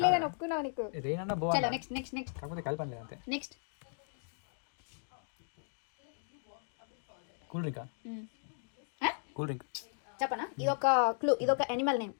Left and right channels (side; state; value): right; silent; digital silence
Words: లేదని ఒప్పుకున్నావు నీకు. రెయిన్ అన్న బో. చలో నెక్స్ట్ నెక్స్ట్ నెక్స్ట్. కాకపోతే కలపని లేదు అంతే. నెక్స్ట్ కూల్ డ్రింకా? కూల్ డ్రింక్ చెప్పనా? ఇదొక క్లూ, ఇదొక యానిమల్ నేమ్.